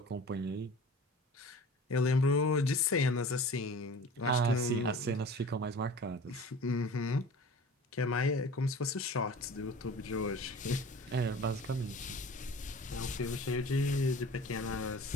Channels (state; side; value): normal; both; correlation 0.40